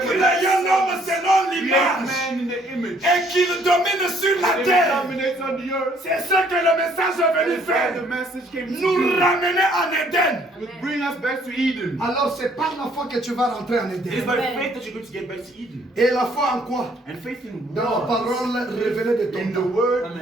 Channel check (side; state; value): both; normal; correlation 0.63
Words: Qu'il y ait un homme selon create l'image man in the image. et qu'il domine sur la And he terre. dominates on the earth. C'est ce que le message est venu That's why faire. the message came to Nous do. ramener en Éden. To bring us back to Eden. Alors c'est par la foi que tu vas rentrer en It is Éden. by faith that you're going to get back to Eden. Et la foi en quoi? And faith in Dans la what? parole révélée de ton In the temps. word